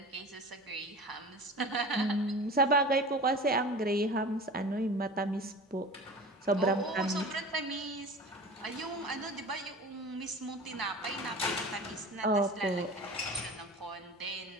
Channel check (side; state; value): both; normal; correlation 0.36